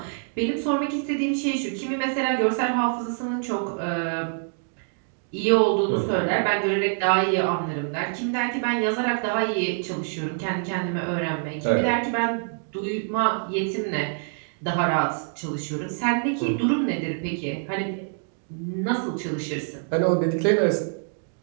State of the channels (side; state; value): left; silent; 60 dB below the other